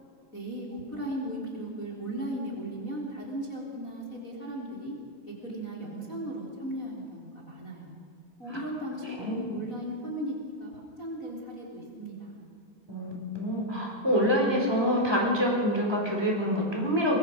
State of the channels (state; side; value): late; right; 4.1 ms